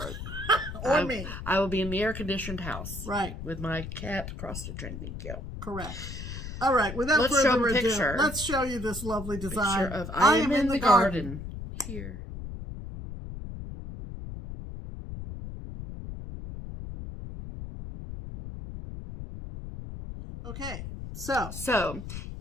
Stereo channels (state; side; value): noise; left; rumble, 9 dB below the sound